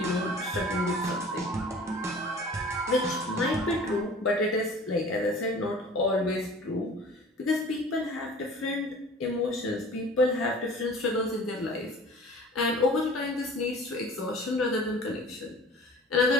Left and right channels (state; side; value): normal; both; correlation 0.44